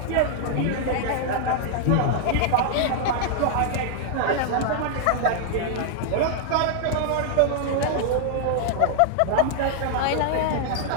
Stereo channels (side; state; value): both; different; correlation 0.00